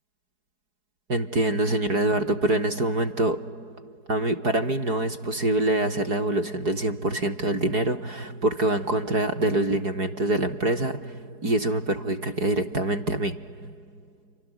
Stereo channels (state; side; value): late; left; 4.8 ms